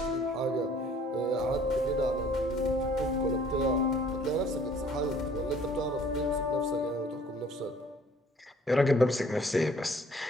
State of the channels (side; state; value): both; normal; correlation 0.56